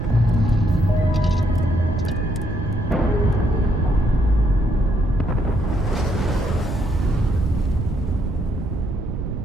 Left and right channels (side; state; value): right; noise; rumble, 5 dB below the sound